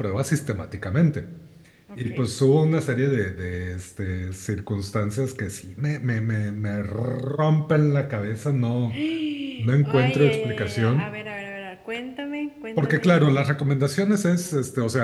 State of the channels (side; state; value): both; identical; correlation 1.00